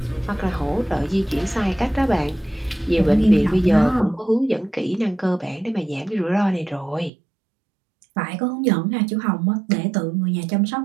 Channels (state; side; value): drops out; left; at 7.1 s